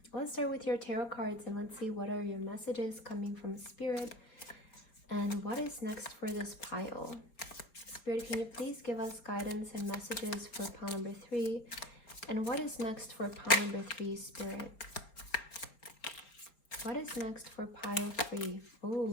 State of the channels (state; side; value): late; right; 4.3 ms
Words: let's start with your tarot cards and let's see what are your messages coming from Spirit and what is next for this pile. Spirit, can you please give us guidance and messages for pile number 3? And what is next for pile number 3, Spirit? What is next for pile 3?